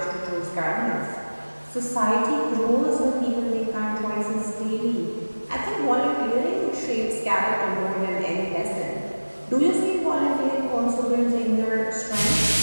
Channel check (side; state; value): both; inverted; correlation -1.00